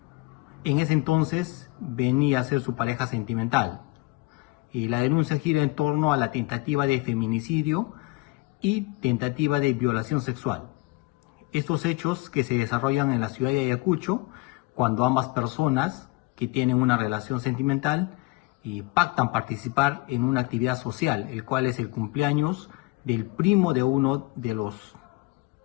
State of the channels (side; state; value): right; quieter; 23.2 dB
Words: en ese entonces venía a ser su pareja sentimental. Y la denuncia gira en torno a la tentativa de feminicidio y tentativa de violación sexual. Estos hechos que se desarrollan en la ciudad de Ayacucho, cuando ambas personas que tienen una relación sentimental pactan participar en una actividad social, el cual es el cumpleaños del primo de uno de los